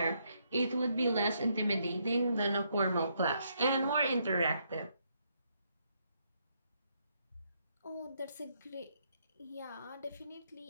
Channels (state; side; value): inverted; both; correlation -0.75